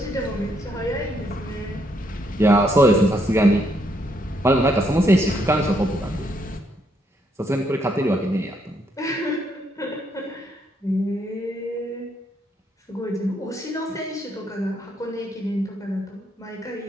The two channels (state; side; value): normal; both; correlation 0.74